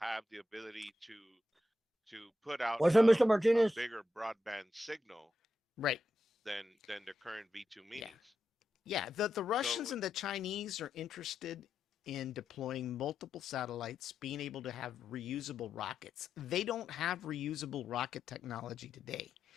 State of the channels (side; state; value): both; normal; correlation 0.86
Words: the ability to put out What's up, Mr. a Martinez? bigger broadband signal Right. than the current V2 Yeah. minis. Yeah. The So Russians and the Chinese are interested in deploying multiple satellites, being able to have reusable rockets. They don't have reusable rocket technology today.